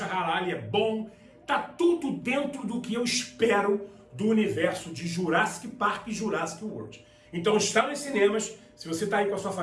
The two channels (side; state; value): both; identical; correlation 1.00